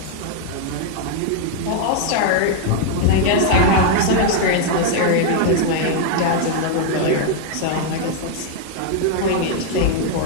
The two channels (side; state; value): both; different; correlation 0.00